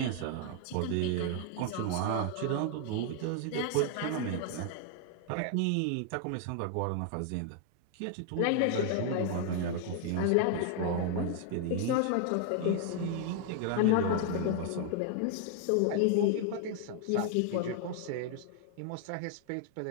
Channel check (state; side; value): different; both; correlation 0.00